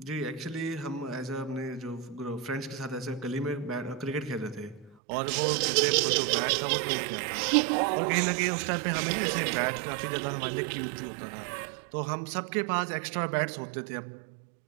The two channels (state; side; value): drops out; left; at 5.0 s